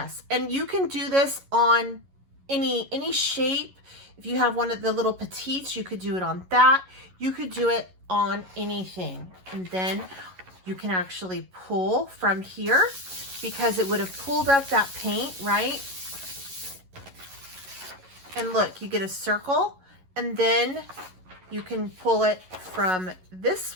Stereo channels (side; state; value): left; late; 11 ms